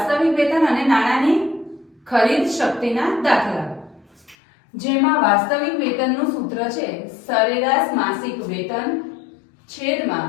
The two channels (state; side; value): drops out; right; at 4.4 s